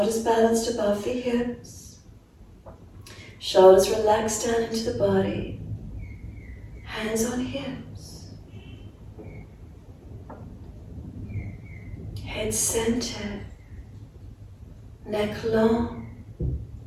balanced above the hips. Shoulders relaxed down into the body. Hands on hips. Head centered. Neck long.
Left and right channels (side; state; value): both; identical; correlation 1.00